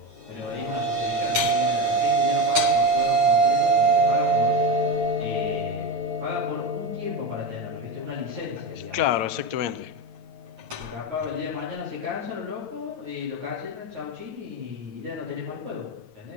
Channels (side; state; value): left; late; 9.0 ms